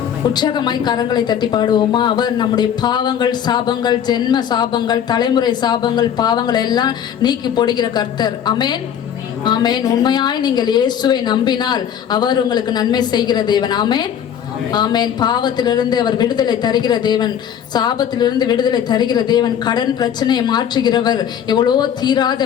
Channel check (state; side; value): quieter; right; 9.0 dB